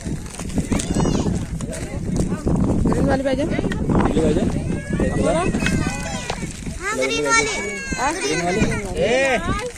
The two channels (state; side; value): identical; both; correlation 1.00